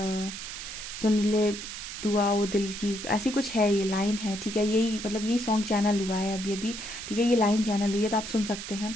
सुन ले दुआ वो दिल की, ऐसी कुछ है, ये लाइन है, ठीक है। यही मतलब यही सॉन्ग चैनल हुआ है अभी अभी, ठीक है, ये लाइन चैनल हुई है, तो आप सुन सकते हैं,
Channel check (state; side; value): noise; right; hiss, 9 dB below the sound